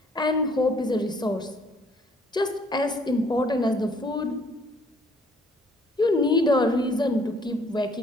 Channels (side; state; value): both; normal; correlation 0.61